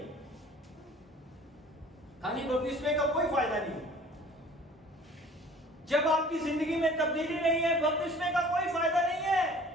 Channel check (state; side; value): normal; both; correlation 0.49